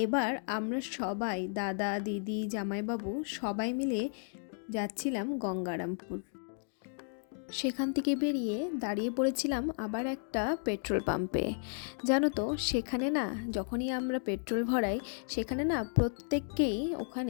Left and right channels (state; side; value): silent; right; 55 dB below the other